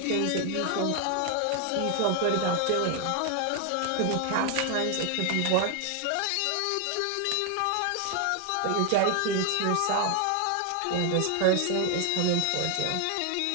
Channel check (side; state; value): both; different; correlation 0.01